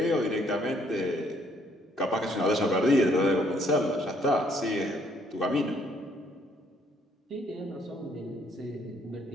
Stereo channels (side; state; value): both; normal; correlation 0.66